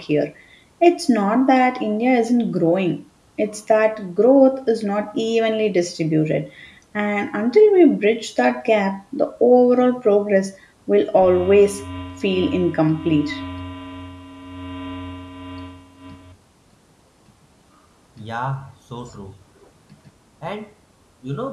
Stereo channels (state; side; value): identical; both; correlation 1.00